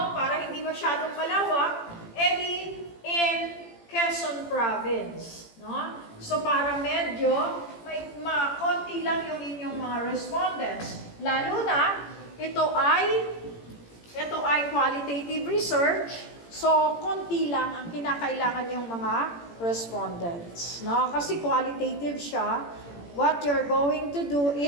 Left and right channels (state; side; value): late; right; 18 ms